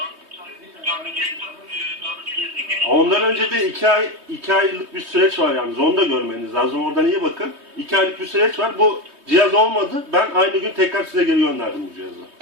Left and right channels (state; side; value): late; left; 3.2 ms